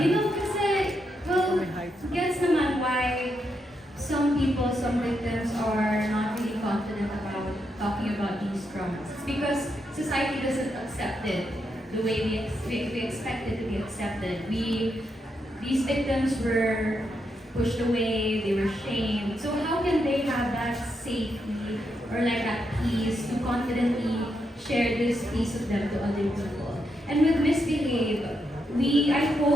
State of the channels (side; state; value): both; normal; correlation 0.82